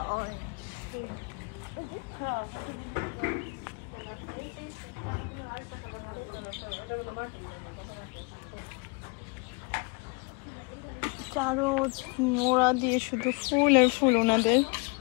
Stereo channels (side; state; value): right; quieter; 32.0 dB